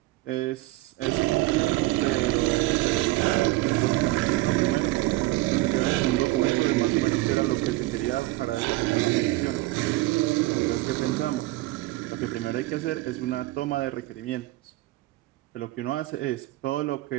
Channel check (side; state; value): left; quieter; 19.1 dB